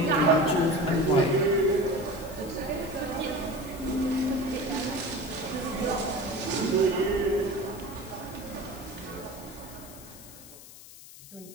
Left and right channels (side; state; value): left; noise; hiss, 17 dB below the sound